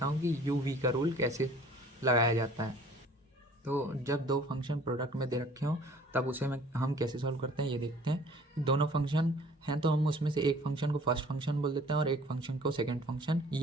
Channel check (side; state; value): both; normal; correlation 0.52